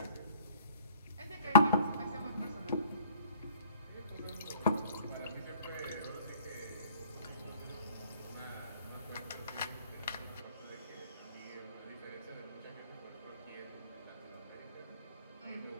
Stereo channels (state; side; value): inverted; both; correlation -0.51